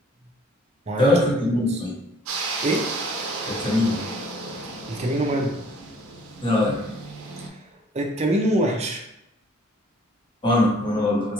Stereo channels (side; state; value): both; normal; correlation 0.57